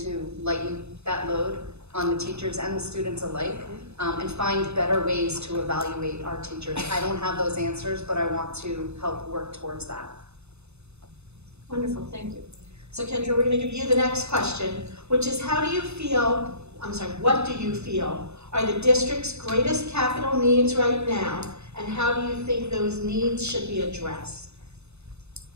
lighten that load on the teachers and the students alike, and find better ways to evaluate our teachers. I don't have those answers, but I want to help work towards that. Wonderful, thank you. So Kendra, we're going to give you the next question, which is what do you feel are the district's greatest capital needs right now, and how do you think those needs should be addressed?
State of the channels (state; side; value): late; left; 0.80 ms